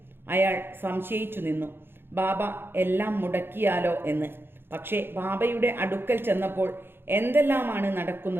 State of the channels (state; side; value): late; left; 0.10 ms